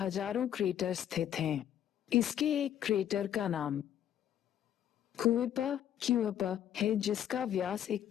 क्रेटर स्थित हैं। इसके एक क्रेटर का नाम क्यूइपा है, जिसका व्यास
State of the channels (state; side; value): quieter; right; 10.4 dB